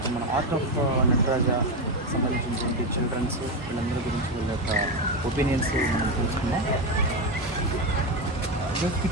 మన ఆర్ట్ ఆఫ్ నటరాజ సంబంధించినటువంటి చిల్డ్రన్స్ వీళ్ళందరి గురించి వీళ్ళ యొక్క ఒపీనియన్స్ మనం తెలుసుకున్నాం. ఈరోజు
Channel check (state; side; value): normal; both; correlation 0.12